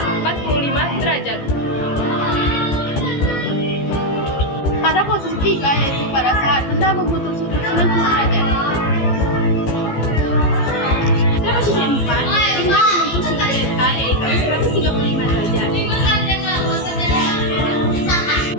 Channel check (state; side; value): late; right; 15 ms